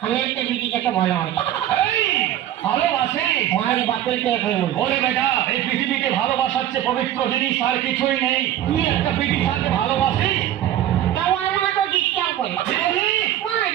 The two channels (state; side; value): quieter; left; 12.1 dB